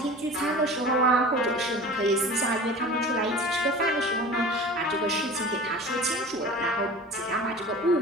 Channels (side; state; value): both; normal; correlation 0.38